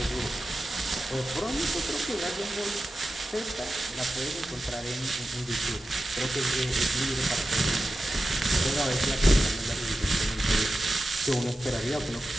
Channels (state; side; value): normal; both; correlation 0.92